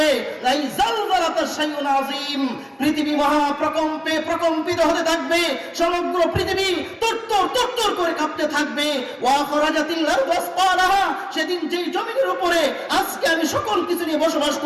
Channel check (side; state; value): both; identical; correlation 1.00